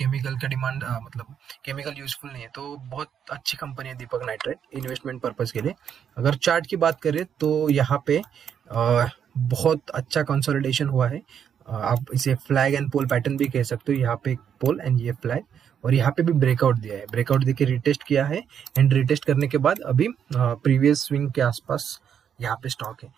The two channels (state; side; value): quieter; left; 8.3 dB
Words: का डिमांड मतलब केमिकल यूजफुल नहीं है। तो बहुत अच्छी कंपनी है दीपक नाइट्राइट इन्वेस्टमेंट पर्पज के लिए। अगर चार्ट की बात करें तो यहाँ पे बहुत अच्छा कंसोलिडेशन हुआ है। आप इसे फ्लैग एंड पोल पैटर्न भी कह सकते हो। यहाँ पे एक पोल एंड ये फ्लैग, और यहाँ पे भी ब्रेकआउट दिया है, ब्रेकआउट देके रिटेस्ट किया है, एंड रिटेस्ट करने के बाद अभी प्रीवियस स्विंग के आसपास यहाँ पे स्टॉक है।